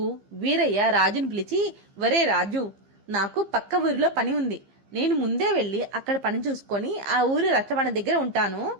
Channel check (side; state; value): left; late; 15 ms